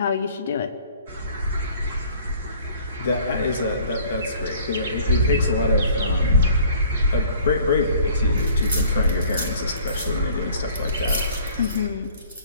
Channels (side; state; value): both; inverted; correlation -0.53